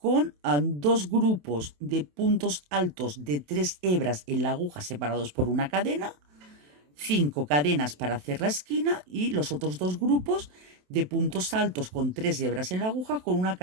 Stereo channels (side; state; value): left; late; 27 ms